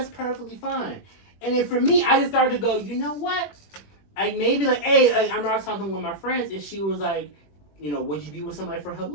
perfectly fine. And then for me, I just started to go, you know what? Hey, I'm not talking with my friends, and she was like, would you be with somebody for her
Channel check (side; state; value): right; late; 21 ms